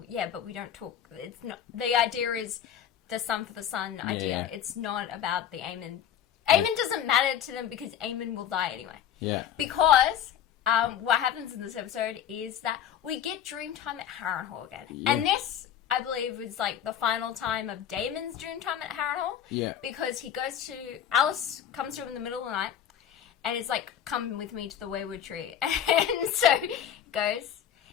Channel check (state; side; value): quieter; right; 9.6 dB